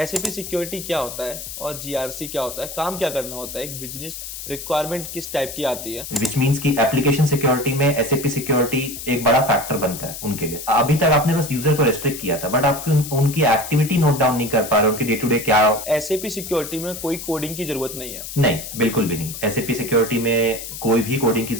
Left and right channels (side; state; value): left; noise; hiss, 9 dB below the sound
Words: security क्या होता है और जीआरसी क्या होता है, काम क्या करना होता है, एक बिजनेस रिक्वायरमेंट किस टाइप की आती है। विच मीन्स की एप्लीकेशन सिक्योरिटी में एसएपी सिक्योरिटी एक बड़ा फैक्टर बनता है उनके लिए। अभी तक आपने बस यूजर को रेस्ट्रिक्ट किया था, बट आप उनकी एक्टिविटी नोट डाउन नहीं कर पा रहे, उनकी डे टू डे क्या। एसएपी सिक्योरिटी में कोई कोडिंग की जरूरत नहीं है। नहीं, बिल्कुल भी नहीं। एसएपी सिक्योरिटी में कोई भी कोडिंग की